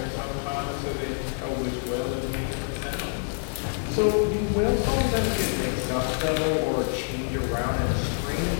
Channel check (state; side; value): silent; right; digital silence